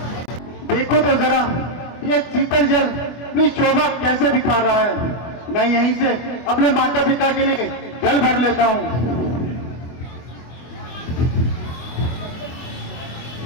देखो तो जरा ये शीतल जल अपनी शोभा कैसे दिखा रहा है। मैं यहीं से अपने माता पिता के लिए जल भर लेता हूँ।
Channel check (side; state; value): right; late; 24 ms